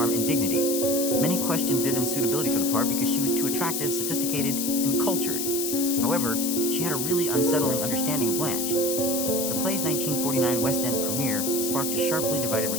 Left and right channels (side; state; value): left; noise; hiss, 2 dB below the sound